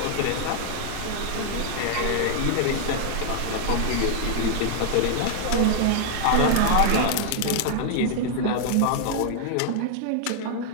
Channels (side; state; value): both; different; correlation 0.00